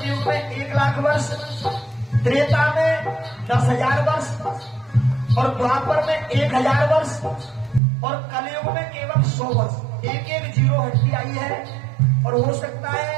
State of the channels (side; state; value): left; drops out; at 7.8 s